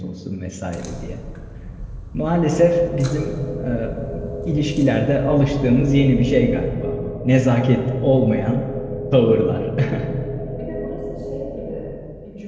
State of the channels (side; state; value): both; identical; correlation 1.00